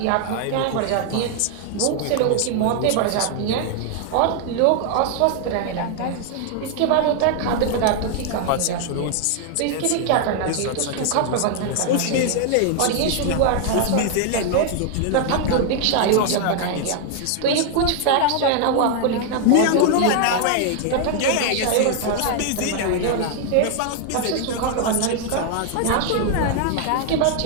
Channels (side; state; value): both; different; correlation 0.00